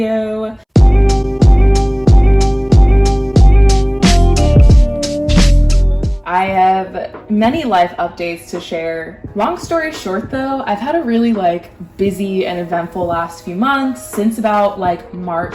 I have many life updates to share. Long story short though, I've had a really busy and eventful last few months. Since about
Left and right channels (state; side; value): identical; both; correlation 1.00